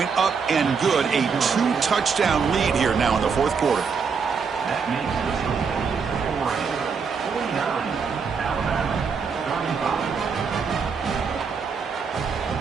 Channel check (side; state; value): left; quieter; 5.7 dB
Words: up and good. A 2-touchdown lead here now in the fourth quarter.